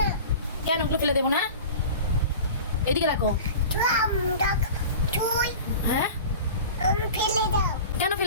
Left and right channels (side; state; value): both; inverted; correlation -0.36